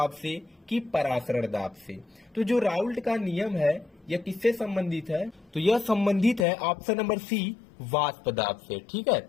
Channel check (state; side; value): drops out; right; at 6.5 s